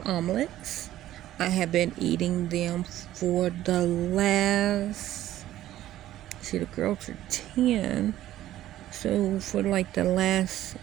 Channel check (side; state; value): left; quieter; 13.6 dB